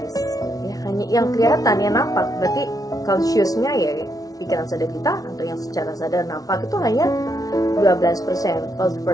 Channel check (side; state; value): right; late; 0.18 ms